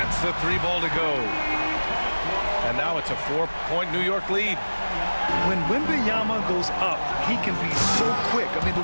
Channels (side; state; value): both; inverted; correlation -1.00